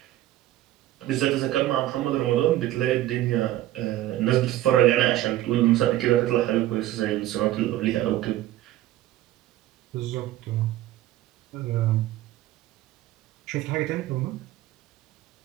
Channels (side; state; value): left; quieter; 14.5 dB